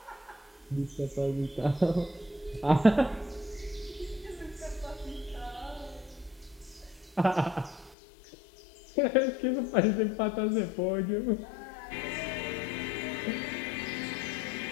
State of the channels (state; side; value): drops out; right; at 8.0 s